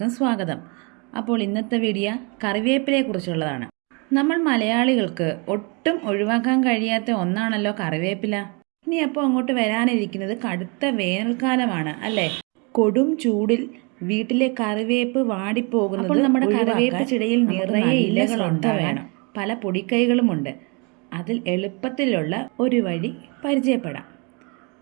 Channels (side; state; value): left; quieter; 32.0 dB